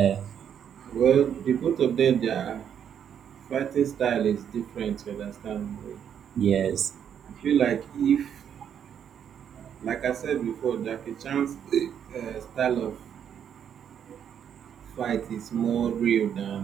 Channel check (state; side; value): quieter; left; 8.6 dB